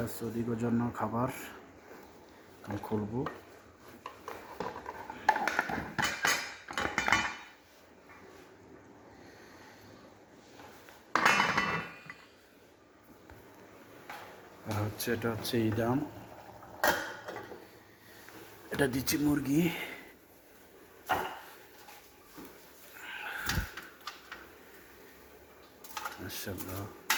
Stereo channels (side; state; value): both; identical; correlation 1.00